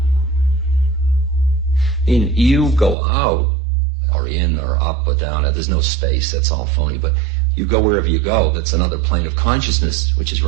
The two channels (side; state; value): left; drops out; at 3.0 s